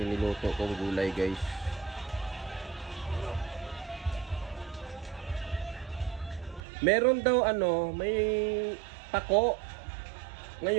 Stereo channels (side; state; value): left; drops out; at 6.6 s